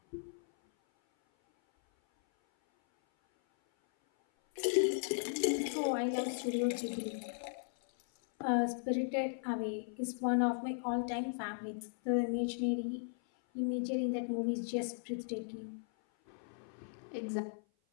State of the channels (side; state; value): right; silent; 53 dB below the other